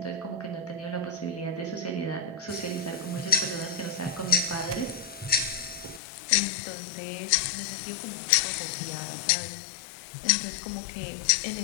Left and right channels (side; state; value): right; drops out; at 6.0 s